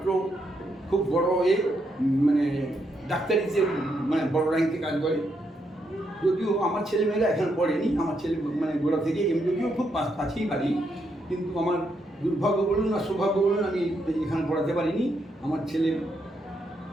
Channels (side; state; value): both; normal; correlation 0.79